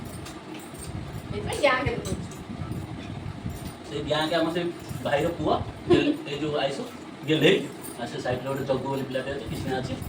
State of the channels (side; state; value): both; identical; correlation 1.00